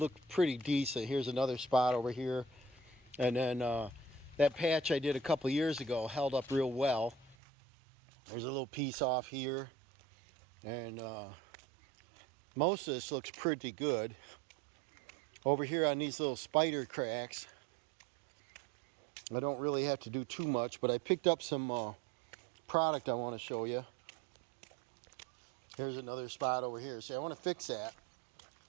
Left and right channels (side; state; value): left; drops out; at 7.4 s